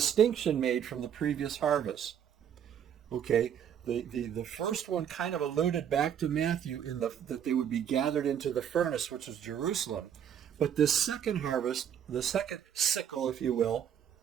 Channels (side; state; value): left; quieter; 9.0 dB